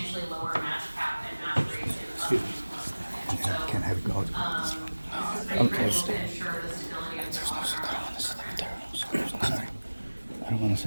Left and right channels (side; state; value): both; inverted; correlation -1.00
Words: lower match cap and match rates in the so, Can't have it go. this is very critical to ensure the stability of the program. I don't want to